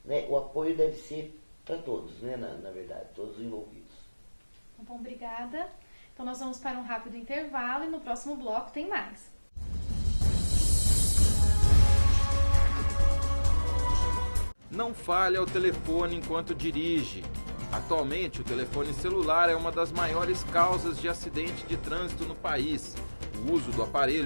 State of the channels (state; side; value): inverted; both; correlation -1.00